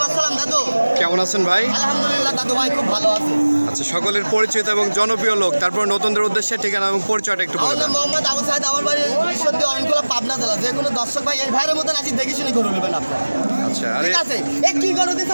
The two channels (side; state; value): both; inverted; correlation -1.00